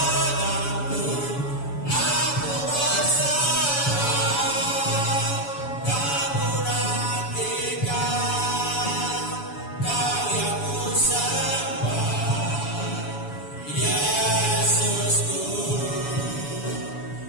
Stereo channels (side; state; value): right; late; 7.0 ms